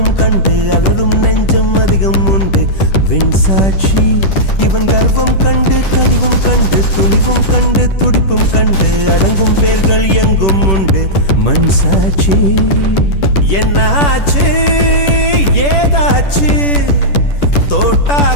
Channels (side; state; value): right; late; 10 ms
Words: கண்டு அலரும் நெஞ்சம் அதிகம் உண்டு வெண்சாட்சி இவன் கர்வம் கண்டு கனிவும் கண்டு துணிவும் கண்டு துடிப்பும் கண்டு அடங்கும் பேர்கள் எங்கும் உண்டு மண் சாட்சி என்னாச்சு ஏதாச்சு